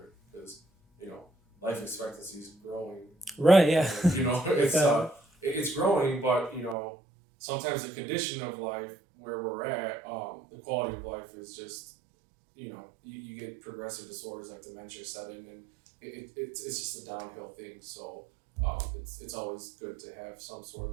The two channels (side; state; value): left; drops out; at 6.8 s